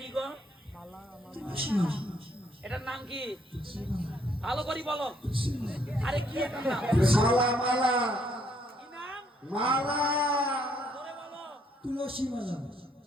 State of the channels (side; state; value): both; normal; correlation 0.69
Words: গো এটার নাম কি ভালো করে বলো আরে কি এটার নাম মালা মালা কি নাম মালা ধরে বলো তুলসী মালা